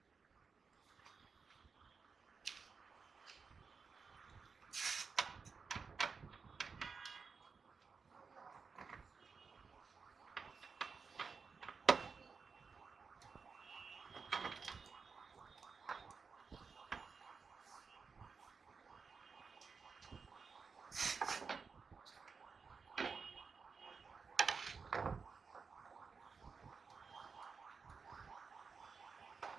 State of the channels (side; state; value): left; quieter; 5.2 dB